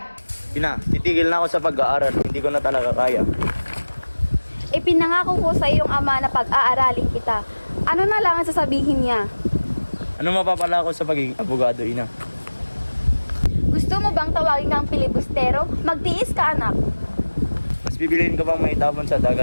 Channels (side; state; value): both; inverted; correlation -1.00